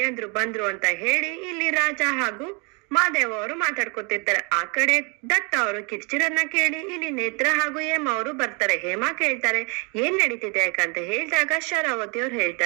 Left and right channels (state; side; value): quieter; left; 32.9 dB